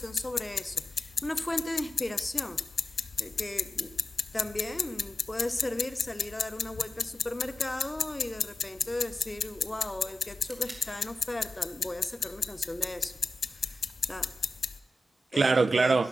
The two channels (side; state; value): both; normal; correlation 0.90